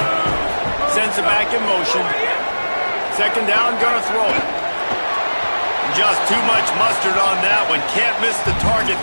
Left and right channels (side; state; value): both; inverted; correlation -1.00